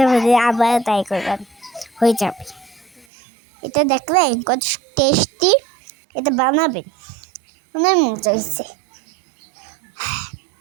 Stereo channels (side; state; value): left; drops out; at 3.1 s